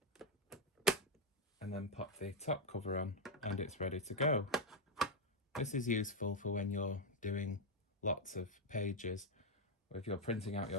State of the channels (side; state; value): both; normal; correlation 0.02